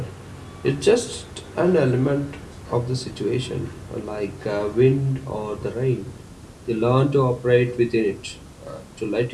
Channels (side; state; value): both; identical; correlation 1.00